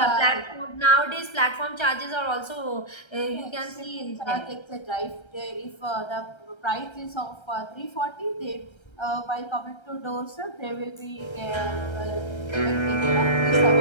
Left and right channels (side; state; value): right; late; 1.3 ms